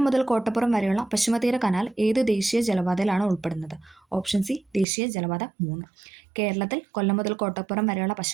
മുതൽ കോട്ടപ്പുറം വരെയുള്ള പശ്ചിമതീര കനാൽ ഏത് ദേശീയ ജലപാതയിലാണ് ഉൾപ്പെടുന്നത്? ഓപ്ഷൻ സി, ദേശീയ ജലപാത 3. കേരളത്തിൽ കൊല്ലം മുതൽ കോട്ടപ്പുറം വരെയുള്ള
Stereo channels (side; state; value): left; drops out; at 4.9 s